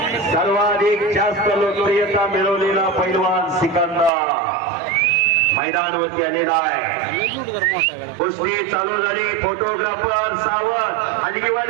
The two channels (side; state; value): left; drops out; at 4.1 s